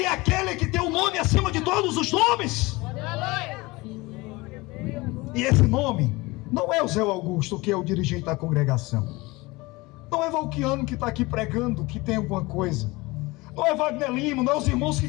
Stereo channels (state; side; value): quieter; right; 22.7 dB